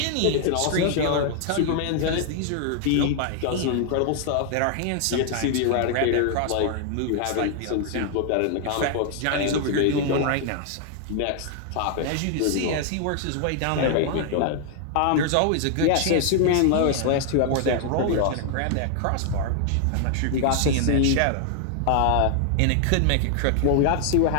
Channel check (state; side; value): different; both; correlation 0.00